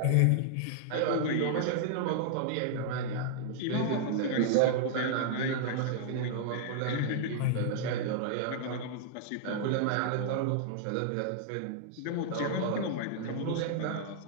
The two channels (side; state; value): both; different; correlation -0.01